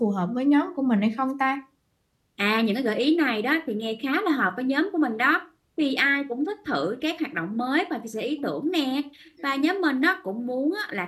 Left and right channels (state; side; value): identical; both; correlation 1.00